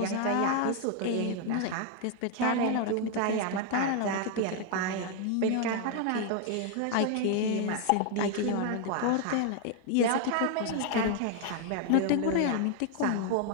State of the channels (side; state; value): both; different; correlation 0.00